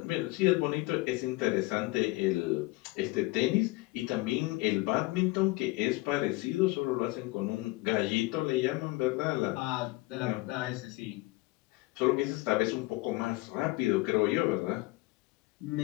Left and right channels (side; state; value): right; quieter; 21.9 dB